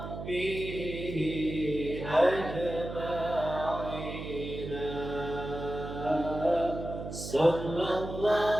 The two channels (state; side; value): noise; right; hum, 8 dB below the sound